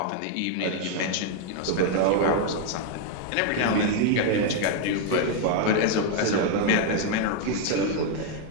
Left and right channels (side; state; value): both; different; correlation 0.01